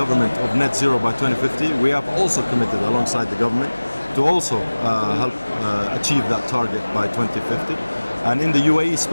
of net zero by 2050, we have also committed alongside the government to also help achieve that target by 2050. And in the UAE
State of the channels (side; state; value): both; inverted; correlation -1.00